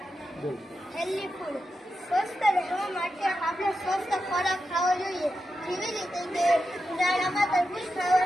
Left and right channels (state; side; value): normal; both; correlation 0.89